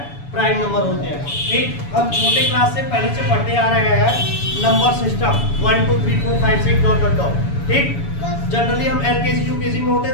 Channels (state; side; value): late; right; 7.1 ms